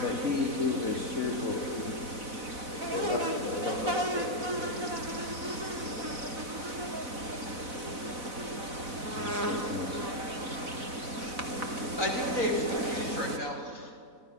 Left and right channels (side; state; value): left; late; 4.0 ms